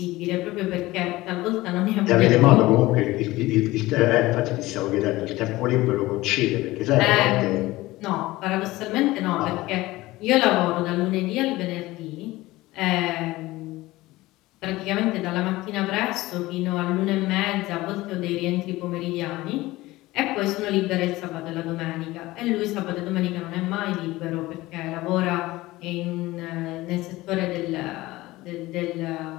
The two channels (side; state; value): right; quieter; 18.8 dB